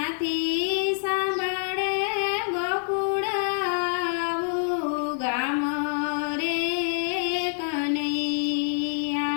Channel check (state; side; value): silent; right; digital silence